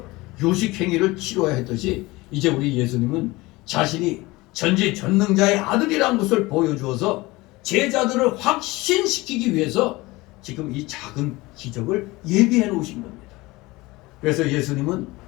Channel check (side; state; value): right; quieter; 21.3 dB